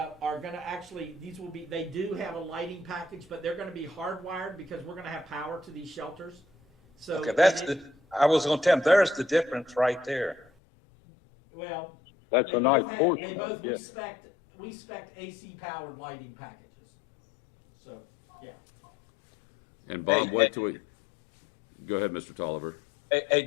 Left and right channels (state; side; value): drops out; right; at 10.5 s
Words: going to they do have a lighting package, but they're going to be hardwired because we're going to have power to these shelters. So okay, I was going to tell them, there's the difference right there. Well, that's a nice portion. They both, yeah. we spec AC powered lighting packages. So, yeah. And Bob, wait till we, go ahead, Mr. Tolliver. Hey,